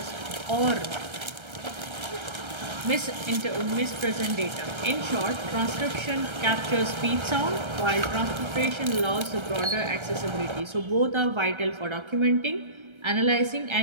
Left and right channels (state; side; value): late; left; 1.3 ms